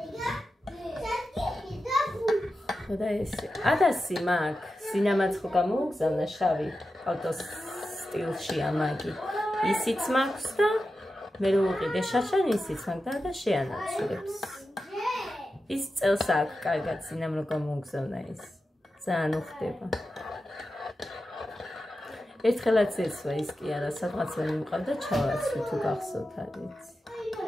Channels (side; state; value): both; normal; correlation 0.91